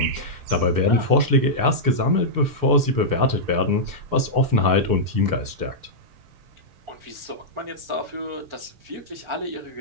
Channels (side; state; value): left; late; 6.8 ms